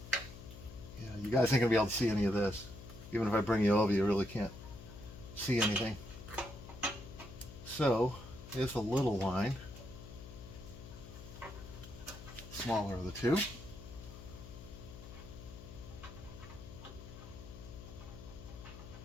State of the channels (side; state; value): left; noise; hum, 14 dB below the sound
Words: Yeah, you guys ain't gonna be able to see any of this. Even if I bring you over, you really can't see anything. So here's the little line. Smaller of the two.